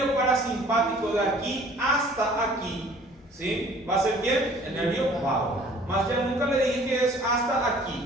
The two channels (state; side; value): normal; both; correlation 0.53